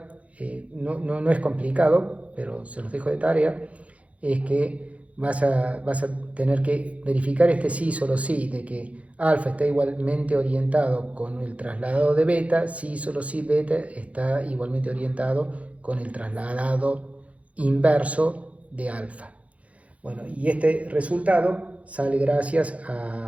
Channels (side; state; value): left; late; 0.065 ms